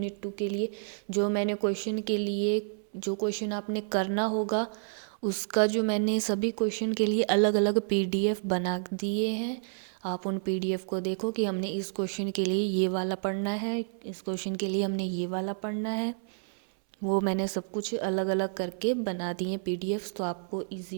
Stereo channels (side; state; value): left; silent; 58 dB below the other